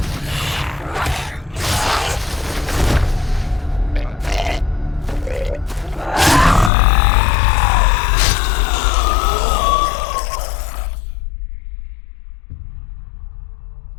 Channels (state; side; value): drops out; right; at 6.7 s